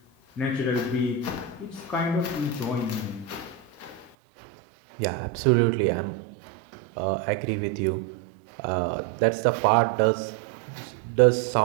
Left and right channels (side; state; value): left; drops out; at 4.1 s